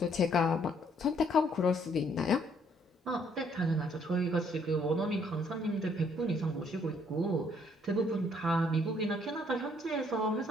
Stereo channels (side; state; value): both; normal; correlation 0.66